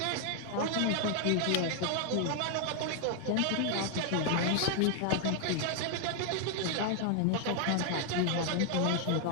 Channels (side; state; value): both; different; correlation 0.00